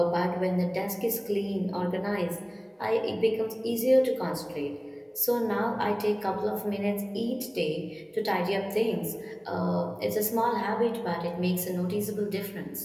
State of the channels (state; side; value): identical; both; correlation 1.00